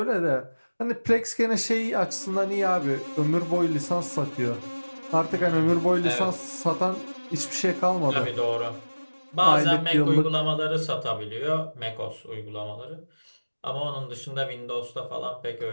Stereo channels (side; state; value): both; inverted; correlation -1.00